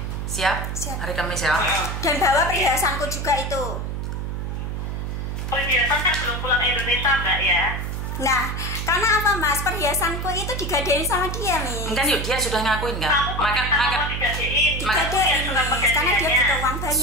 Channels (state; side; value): noise; right; hum, 4 dB below the sound